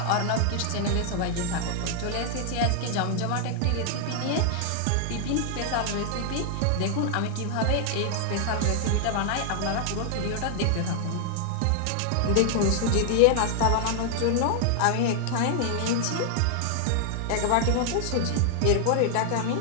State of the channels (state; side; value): different; both; correlation 0.00